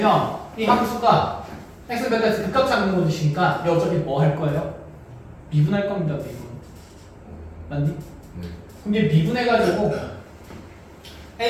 이 함수가 x 베타에서 극값 찾는 곳이니까 얘 어차피 뭐 할 거예요? 미분할 겁니다, 미분. 맞니? 네. 그럼 얘 미분해가지고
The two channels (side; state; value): both; identical; correlation 1.00